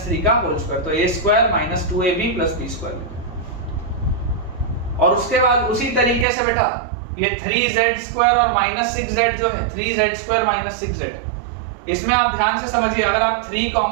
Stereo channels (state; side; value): drops out; left; at 6.2 s